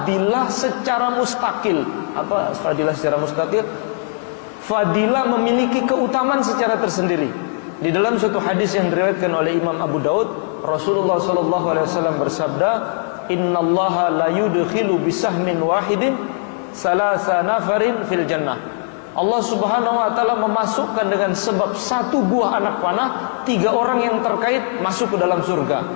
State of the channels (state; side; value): silent; right; 66 dB below the other